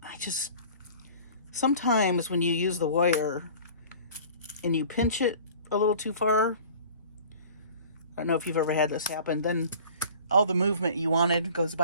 Sometimes when you use the wire and you pinch it a little too far, I don't know if you've ever had this happen, then all the movement you wanted goes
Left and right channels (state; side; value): inverted; both; correlation -0.45